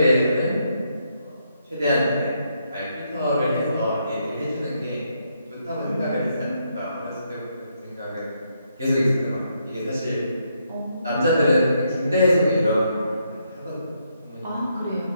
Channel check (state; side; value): inverted; both; correlation -0.77